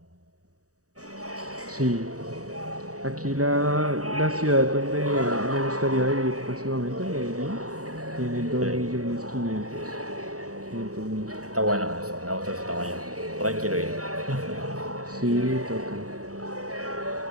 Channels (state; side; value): late; left; 0.66 ms